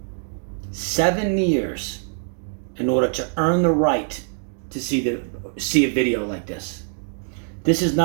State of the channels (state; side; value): silent; left; 60 dB below the other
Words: 7 years in order to earn the right to see a video like this. This is